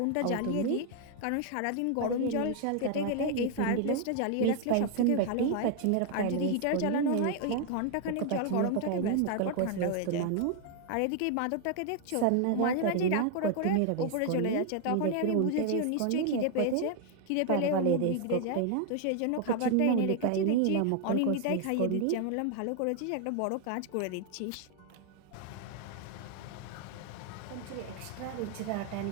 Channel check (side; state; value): both; different; correlation 0.00